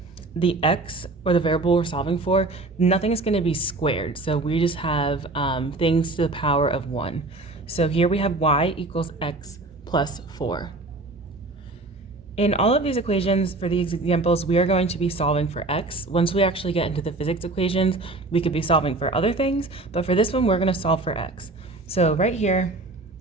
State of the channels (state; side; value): quieter; left; 3.0 dB